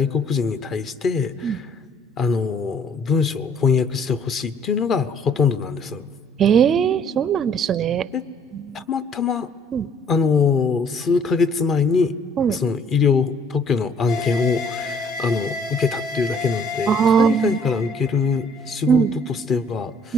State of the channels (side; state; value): both; normal; correlation 0.59